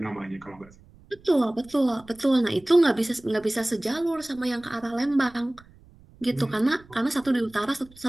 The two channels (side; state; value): right; noise; rumble, 26 dB below the sound